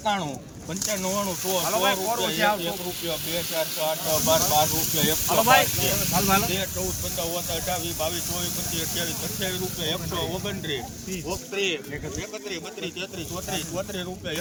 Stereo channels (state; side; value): identical; both; correlation 1.00